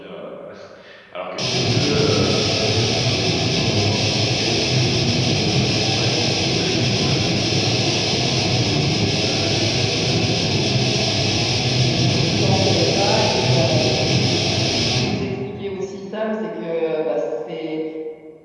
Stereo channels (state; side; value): identical; both; correlation 1.00